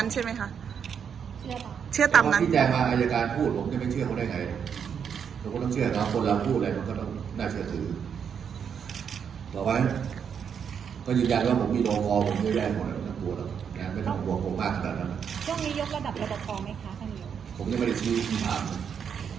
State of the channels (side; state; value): left; quieter; 7.4 dB